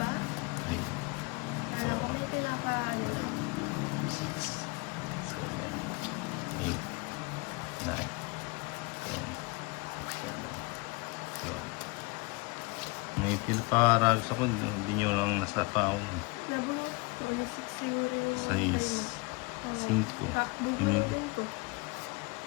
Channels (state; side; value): quieter; right; 27.5 dB